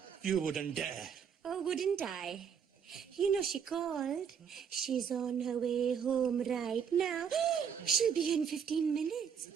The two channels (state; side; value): quieter; left; 7.4 dB